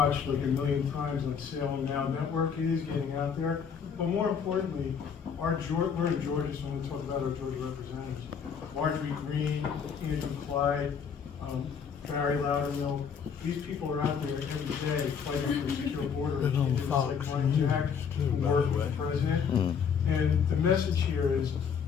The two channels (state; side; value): quieter; right; 6.8 dB